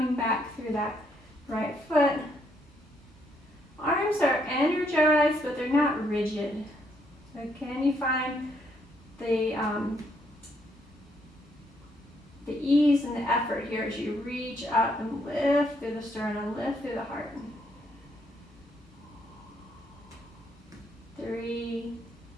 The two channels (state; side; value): normal; both; correlation 0.72